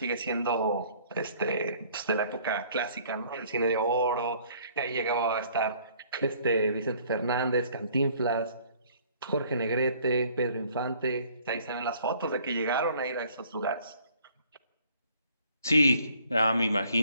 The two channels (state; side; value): inverted; both; correlation -0.58